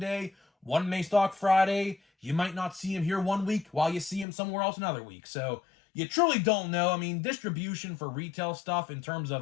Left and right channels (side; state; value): right; drops out; at 4.2 s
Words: one may stock Friday. You might not see them here one week while you see them somewhere else another week. So you truly don't know. I mean, distribution for retail stuff in terms